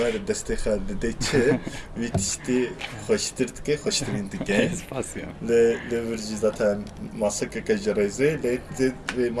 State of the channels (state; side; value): identical; both; correlation 1.00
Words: destê xwe dide çi vî tiştî xweştir dike, xweştirîn dike. Spasya. Lê vir jî zaten masekeke ji rêzê lê vê